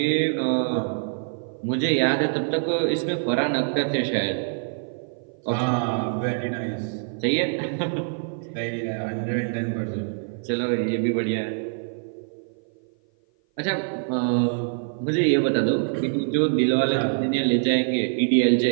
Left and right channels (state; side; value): silent; left; 56 dB below the other